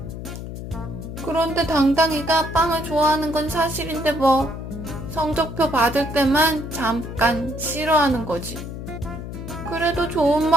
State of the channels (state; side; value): noise; left; hum, 9 dB below the sound